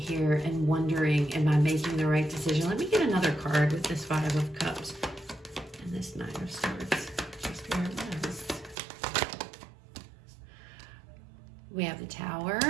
and wondering, am I making the right decision? Let me get another card with this Five of Cups and this Nine of Swords. We have the Tower.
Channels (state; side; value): drops out; left; at 8.8 s